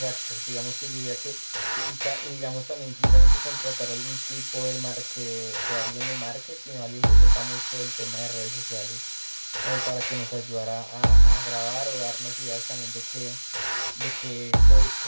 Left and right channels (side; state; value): both; inverted; correlation -1.00